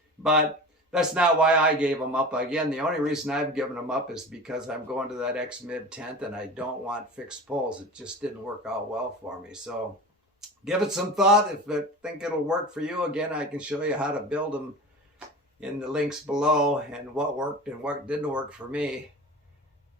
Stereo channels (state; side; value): normal; both; correlation 0.33